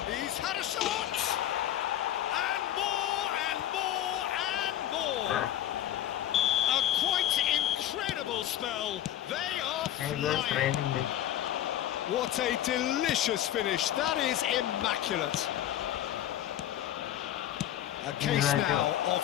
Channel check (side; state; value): right; quieter; 12.0 dB